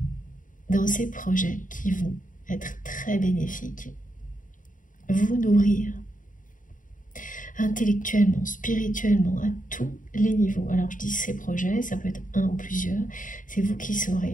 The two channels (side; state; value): right; late; 0.38 ms